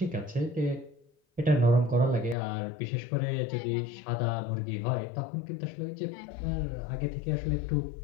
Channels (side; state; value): right; drops out; at 2.4 s